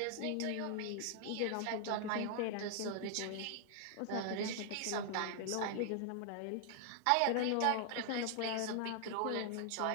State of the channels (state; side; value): different; both; correlation 0.00